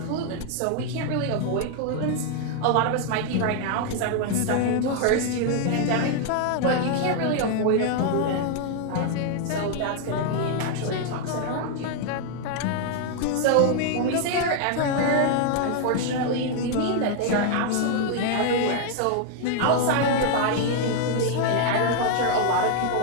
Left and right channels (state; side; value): different; both; correlation 0.00